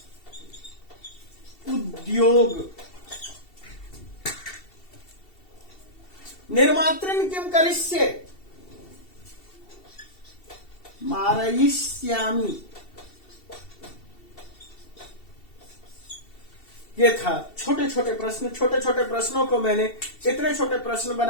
उद्योग। निर्मातृन किम करिष्ये? मारयिष्यामि। ये था छोटे छोटे प्रश्न। छोटे छोटे प्रश्नों को मैंने इतने छोटे प्रश्न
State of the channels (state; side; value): late; right; 2.7 ms